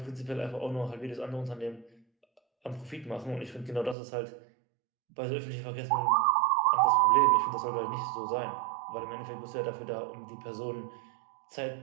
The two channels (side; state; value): left; drops out; at 4.0 s